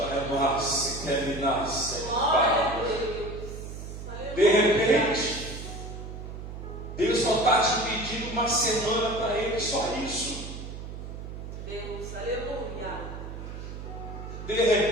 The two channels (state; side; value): noise; right; hum, 9 dB below the sound